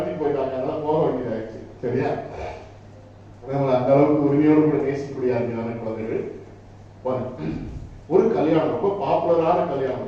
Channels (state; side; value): identical; both; correlation 1.00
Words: போயிட்டாங்க. அதனால போக வேண்டியதாச்சு. சரியா? அந்த அளவுக்கு உரிமையோடு கூட நேசிக்கக்கூடிய அருமையான குழந்தைகள். ஒரு கல்யாணம், ரொம்ப பாப்புலரான